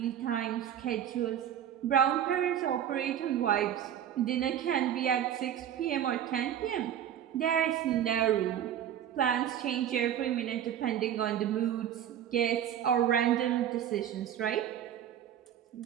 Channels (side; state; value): left; quieter; 10.1 dB